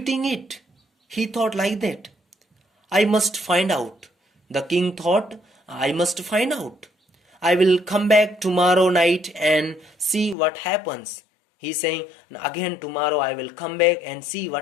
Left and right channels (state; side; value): drops out; right; at 10.4 s